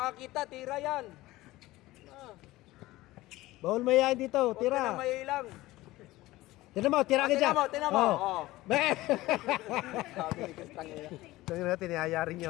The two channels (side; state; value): right; quieter; 18.0 dB